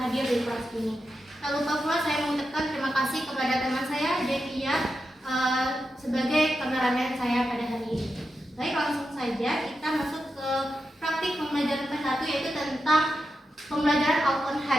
hadir di kelas ini. Tak lupa pula saya mengucapkan terima kasih kepada teman saya Devia sebagai kameramen saya pada hari ini. Baik, langsung saja kita masuk ke praktik pembelajaran PAI 1 yaitu tentang pembelajaran Al-Quran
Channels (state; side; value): normal; both; correlation 0.88